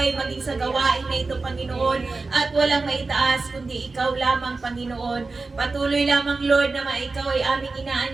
maging sa gawain na ito, Panginoon. At walang maitaas kundi ikaw lamang, Panginoon. Patuloy lamang, Lord, na ikaw ay aming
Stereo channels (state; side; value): quieter; left; 3.8 dB